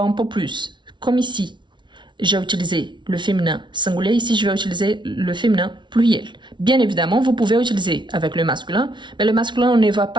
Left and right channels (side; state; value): left; late; 0.23 ms